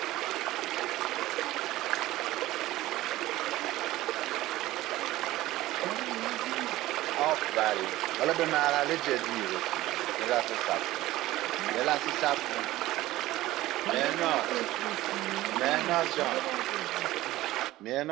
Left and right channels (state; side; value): quieter; left; 16.5 dB